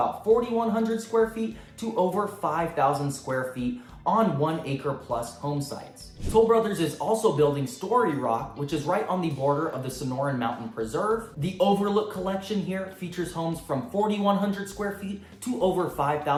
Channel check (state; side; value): identical; both; correlation 1.00